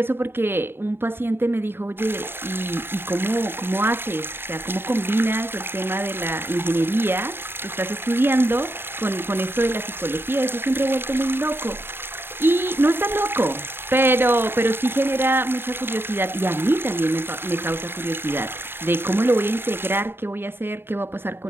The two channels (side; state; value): left; late; 0.11 ms